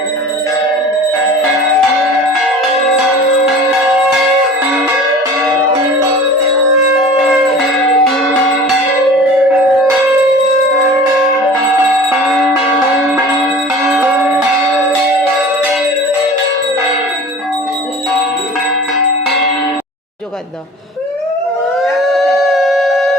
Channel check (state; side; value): normal; both; correlation 0.41